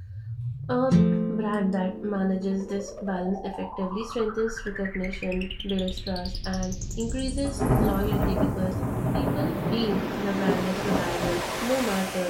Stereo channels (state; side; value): identical; both; correlation 1.00